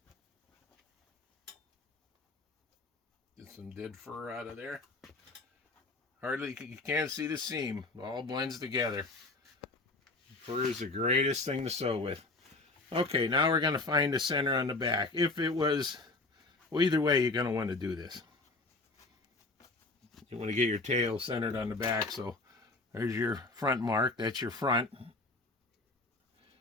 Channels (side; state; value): right; quieter; 3.2 dB